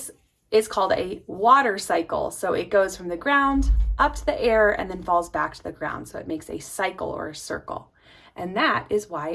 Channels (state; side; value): identical; both; correlation 1.00